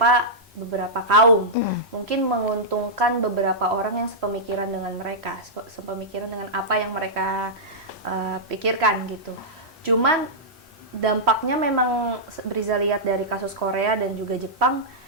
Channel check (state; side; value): normal; both; correlation -0.11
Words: kaum, mungkin menguntungkan beberapa orang yang sepemikiran dengan mereka, sepemikiran dengan apa yang mereka pikirkan gitu. Cuman dampaknya memang Briza lihat dari kasus Korea dan juga Jepang